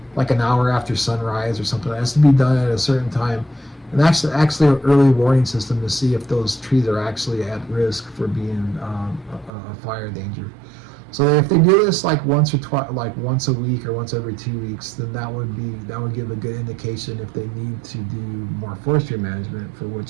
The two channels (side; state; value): left; drops out; at 9.5 s